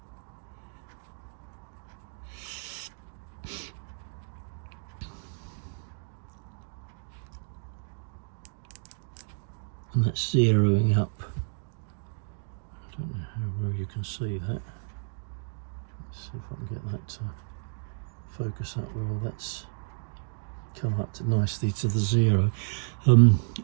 And that's zeroing up. I don't know how well you can see that. Let's see if I can get that to focus up well. That's come up to nicely to the 0.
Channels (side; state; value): left; silent; digital silence